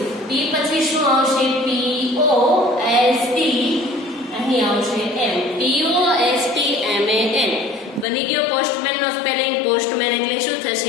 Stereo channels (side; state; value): right; drops out; at 8.1 s